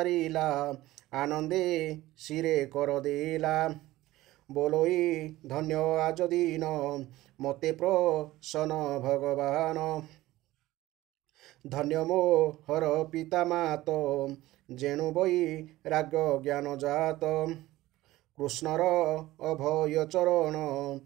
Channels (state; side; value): quieter; left; 17.0 dB